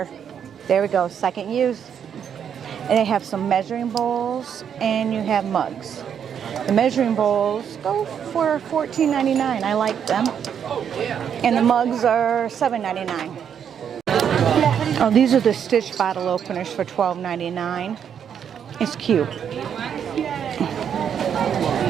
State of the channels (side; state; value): left; quieter; 8.2 dB